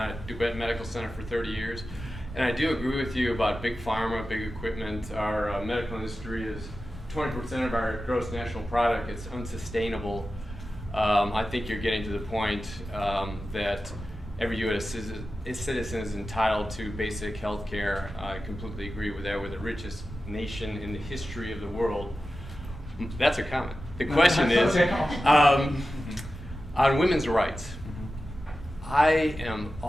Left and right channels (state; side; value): normal; both; correlation 0.93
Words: at DuBet Medical Center for 30 years. And I do agree with you about big pharma, big equipment. Our medical industry is 20% of our gross national product. It's unsustainable. I think you're getting to the point that every U.S. citizen is entitled to basic health care. I completely agree with that. We're the richest nation in the history of the world. That's a comment. The question is, on women's rights, I am